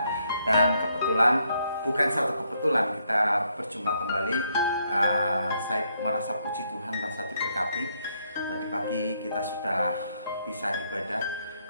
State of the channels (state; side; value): inverted; both; correlation -0.74